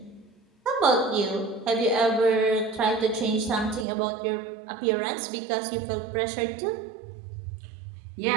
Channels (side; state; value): left; drops out; at 3.9 s